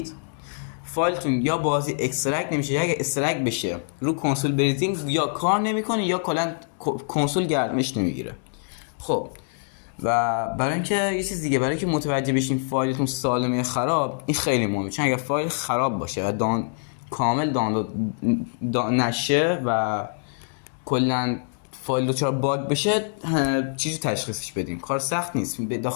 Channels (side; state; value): right; silent; digital silence